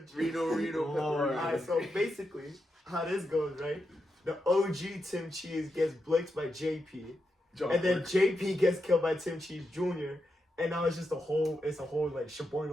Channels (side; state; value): both; normal; correlation 0.86